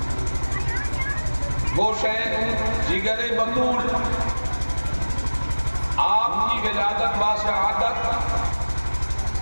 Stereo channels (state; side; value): inverted; both; correlation -1.00